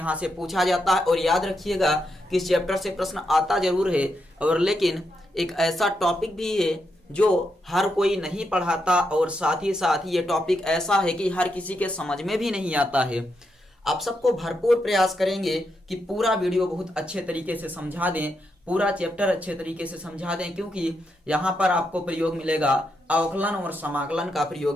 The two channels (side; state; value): both; normal; correlation 0.83